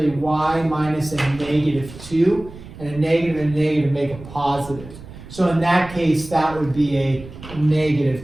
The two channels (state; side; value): noise; right; rumble, 16 dB below the sound